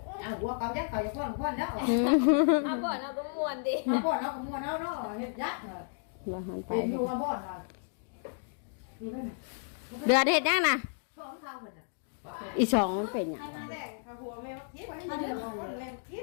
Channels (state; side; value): silent; right; digital silence